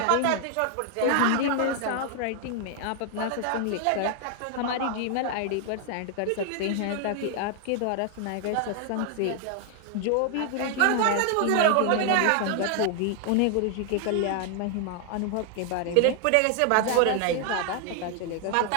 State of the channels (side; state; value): both; different; correlation 0.00